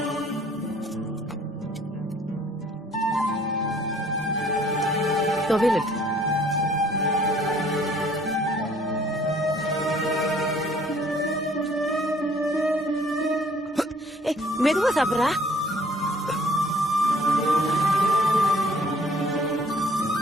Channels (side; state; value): both; normal; correlation 0.58